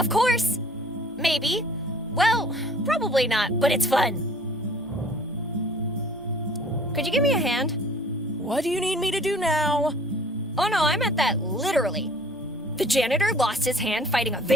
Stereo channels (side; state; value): both; normal; correlation 0.51